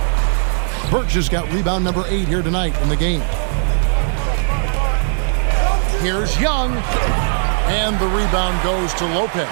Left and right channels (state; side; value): silent; left; digital silence